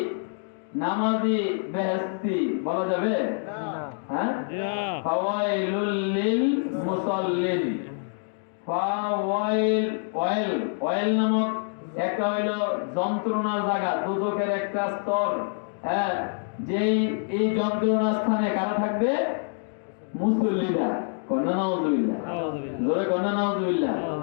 নামাজি বেহেশতি বলা যাবে? হ্যাঁ। জি না। ফাওয়াইলুল লিল মুসাল্লিন। ওয়াইল নামক একটা হইল যন্ত্রণার জায়গা, দুজকের একটা স্তর। হ্যাঁ, যেই এই যন্ত্রণার স্থানে কারা থাকবে? মুসল্লিরা। কন্যা নাউজুবিল্লাহ। আউযুবিল্লাহ। জোরে কন্যা নাউজুবিল্লাহ।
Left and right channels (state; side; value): silent; right; digital silence